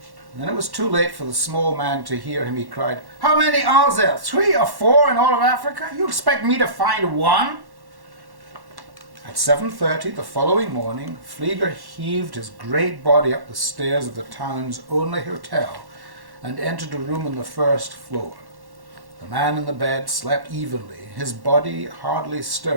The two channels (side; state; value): left; late; 1.1 ms